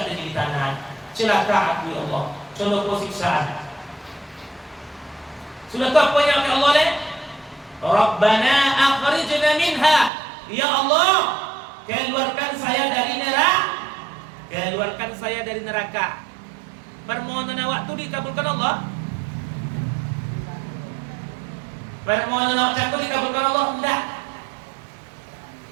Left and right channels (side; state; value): left; drops out; at 10.1 s